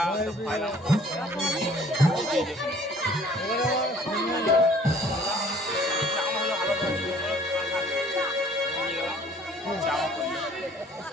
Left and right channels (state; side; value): normal; both; correlation 0.55